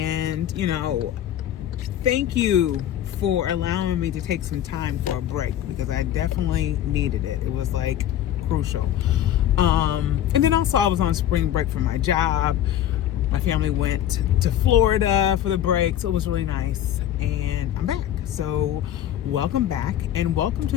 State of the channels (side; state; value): right; quieter; 11.3 dB